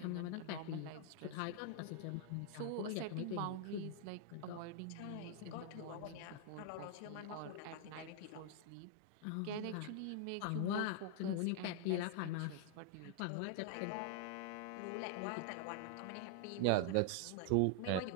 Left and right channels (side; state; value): both; different; correlation 0.00